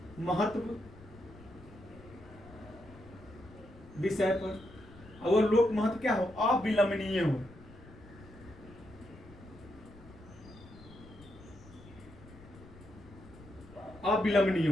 महत्व विषय पर, और लोक महत्व क्या हो, अविलंबनीय हो। अविलंबनीय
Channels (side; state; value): left; noise; rumble, 20 dB below the sound